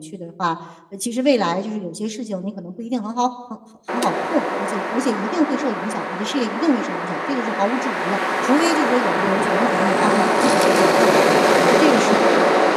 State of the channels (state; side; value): identical; both; correlation 1.00